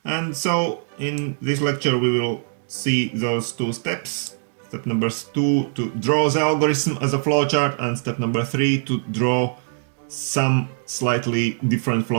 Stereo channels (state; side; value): silent; left; digital silence